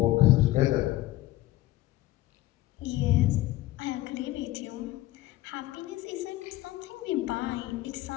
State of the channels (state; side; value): quieter; right; 16.4 dB